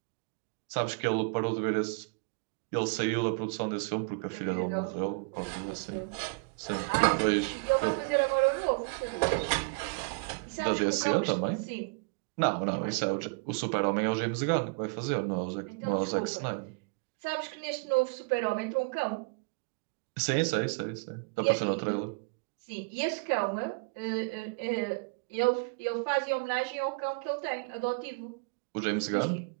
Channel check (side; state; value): left; quieter; 33.2 dB